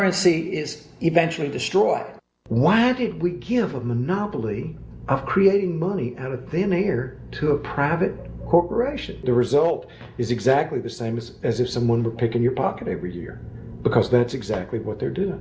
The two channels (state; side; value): identical; both; correlation 1.00